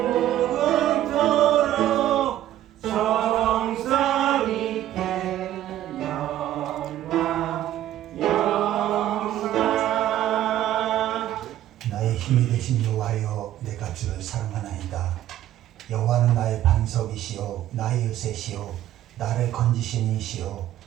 힘이 되신 여호와여, 내가 주를 사랑하나이다. 여호와는 나의 반석이시요 나의 요새시요 나를 건지시는 이시요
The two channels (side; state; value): left; quieter; 12.8 dB